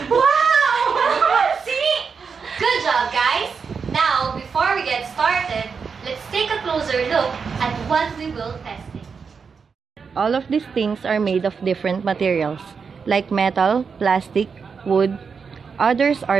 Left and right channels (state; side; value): quieter; left; 5.7 dB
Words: Wow! Calamansi! Good job, guys. Now, before we get started, let's take a closer look at what we will test. All of these things are made of different materials, like metal, plastic, wood. Others are